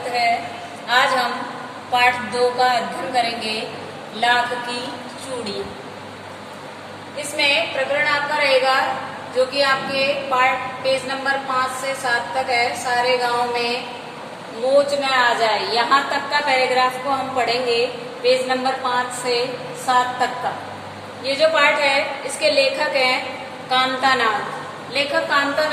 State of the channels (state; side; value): identical; both; correlation 1.00